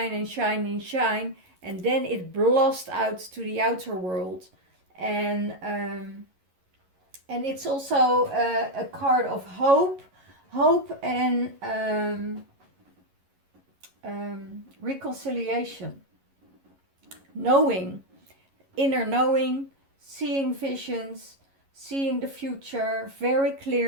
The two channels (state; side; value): late; left; 11 ms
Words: and shine and shine, and then it blasts out to the outer world. And it's also a card of hope, Hope and reconciliation. Knowing, inner knowing, seeing visions, seeing the future very